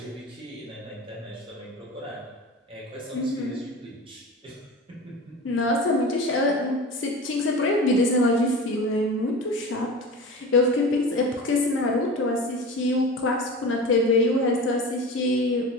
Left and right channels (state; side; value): normal; both; correlation 0.32